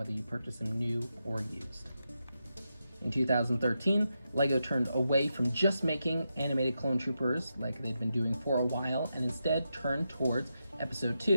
you purchase him new or used. In 2013, LEGO turned away from just making animated clone troopers like they'd been doing for a while, and instead turned towards Episode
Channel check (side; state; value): both; inverted; correlation -0.86